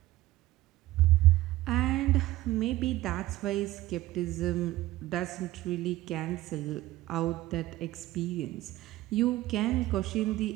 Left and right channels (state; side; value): quieter; left; 16.7 dB